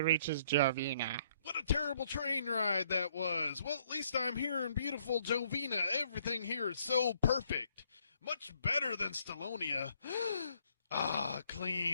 Jovina. What a terrible train ride that was. Well, at least I'm here in beautiful Jovina. Everything here is so perfect. Much better than Stallonia.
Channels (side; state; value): both; inverted; correlation -0.67